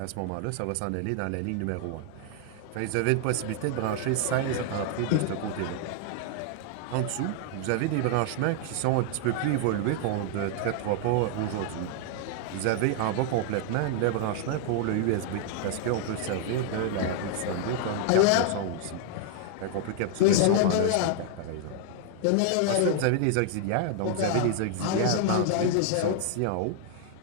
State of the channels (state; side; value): different; both; correlation 0.00